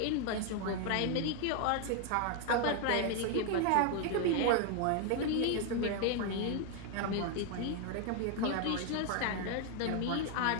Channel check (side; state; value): both; different; correlation 0.00